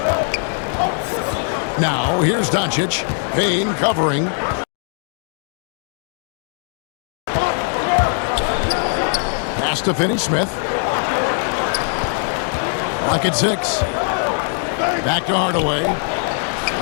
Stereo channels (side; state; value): right; silent; 56 dB below the other